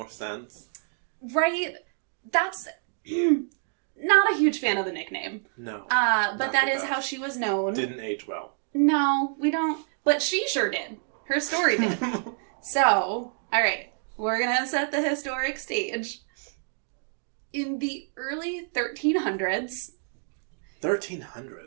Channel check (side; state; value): left; silent; 60 dB below the other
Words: sense. Right? That's not a huge fan of the nickname. No. But that is how she was known. Didn't age well. No, we don't. But she sure did. Her story did. So, all right. We're going to set the historic stage. In the early 1300s.